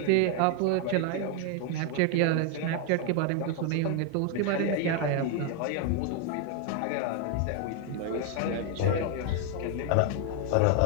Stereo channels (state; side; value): different; both; correlation 0.01